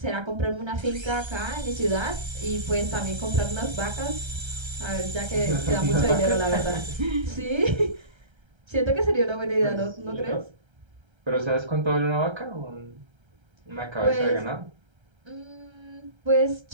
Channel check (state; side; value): late; left; 1.3 ms